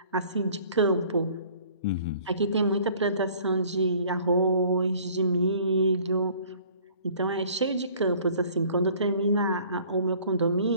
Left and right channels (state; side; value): inverted; both; correlation -0.54